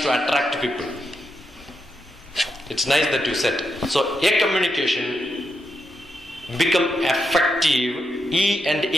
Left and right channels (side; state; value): both; normal; correlation 0.84